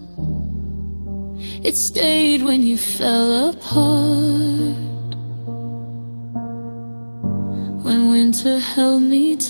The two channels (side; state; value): both; inverted; correlation -1.00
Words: It stayed when you fell apart, when winter held me